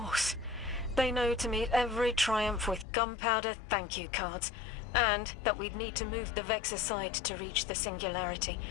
They know to meet every triumph with gunpowder thank you cards, and that we'd need to move the Vex aside to reach the Singularity.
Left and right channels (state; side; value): drops out; right; at 2.9 s